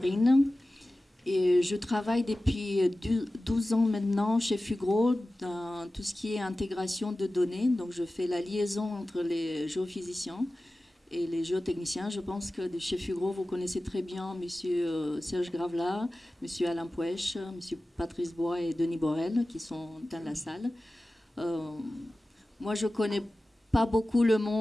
Et je travaille depuis 12 ans maintenant chez Fugro dans tout ce qui est intégration de données. Donc je fais la liaison entre les géophysiciens et les géotechniciens. Je pense que chez Fugro, vous connaissez très bien M. Serge Gravelat, M. Alain Pouèche, M. Patrice Bois et Denis Borel qui sont dans la salle. Moi, je connais pas beaucoup le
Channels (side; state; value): both; normal; correlation 0.96